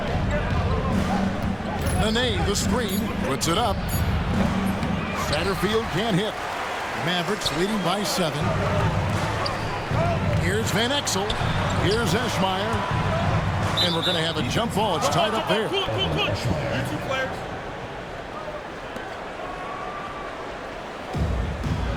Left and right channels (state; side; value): identical; both; correlation 1.00